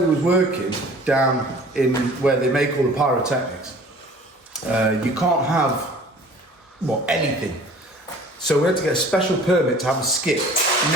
was working, down in where they make all the pyrotechnics, you can't have, well, anything. So we had to get a special permit to have a skip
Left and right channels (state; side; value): normal; both; correlation 0.48